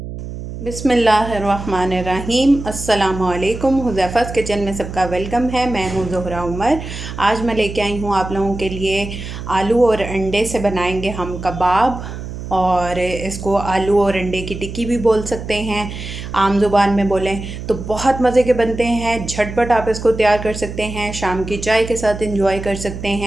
बिस्मिल्लाहिर्रहमानिर्रहीम, अस्सलामुअलैकुम। हुज़ैफ़ा's किचन में सबका वेलकम है। मैं हूँ ज़ोहरा उमर। आज मैं लेके आई हूँ आप लोगों के लिए आलू और अंडे से बनाएंगे हम कबाब, और इसको आलू और अंडे की टिक्की भी बोल सकते हैं, आम ज़ुबान में बोलें तो। बहुत मज़े के बनते हैं, झटपट आप इसको तैयार कर सकते हैं, शाम की चाय के साथ एंजॉय कर सकते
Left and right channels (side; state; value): right; noise; hum, 9 dB below the sound